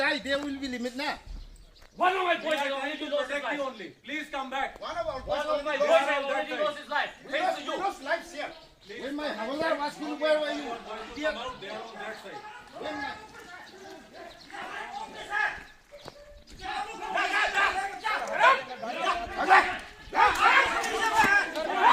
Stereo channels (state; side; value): identical; both; correlation 1.00